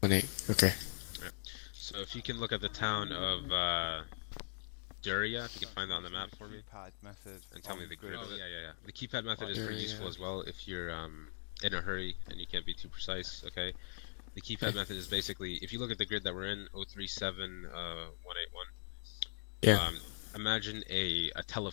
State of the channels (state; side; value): silent; right; digital silence